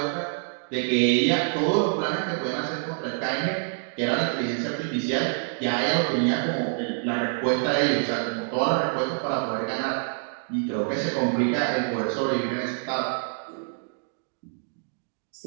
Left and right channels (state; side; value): silent; left; digital silence